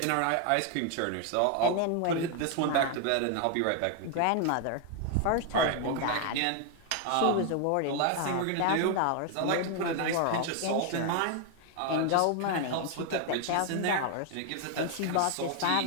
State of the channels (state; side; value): different; both; correlation 0.01